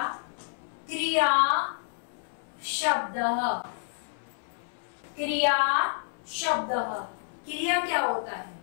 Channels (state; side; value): silent; right; 58 dB below the other